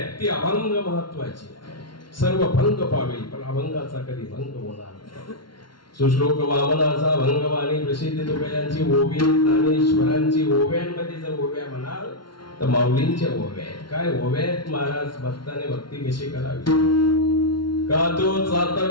ती अभंग महत्वाची आहे. सर्व भंग पावेल पण अभंगाचा कधी भंग होणार नाही. सुश्लोक वामनाचा भंगवाणी प्रसिद्ध तुकयांची ओवी ज्ञानेश्वरांची ओव्यांमध्ये जर ओव्या म्हणाल तर माऊलींच्या ओव्या आहेत. काय ओव्या आहेत महाराज? भक्ताने भक्ती कशी करावी? का तो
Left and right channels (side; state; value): right; late; 0.73 ms